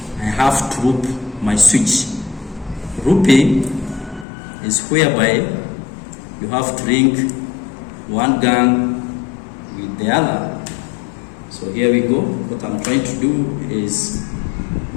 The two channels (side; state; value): right; drops out; at 4.2 s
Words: I have to loop my switch. Looping is whereby you have to link one gang with the other. So here we go. What I'm trying to do is